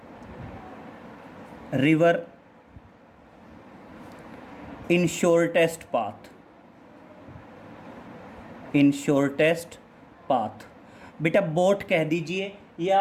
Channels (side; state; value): both; identical; correlation 1.00